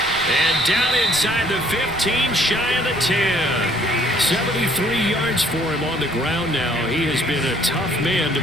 And down inside the 15, shy of the 10. 73 yards for him on the ground now. He has been a tough man to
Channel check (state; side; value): noise; left; rumble, 18 dB below the sound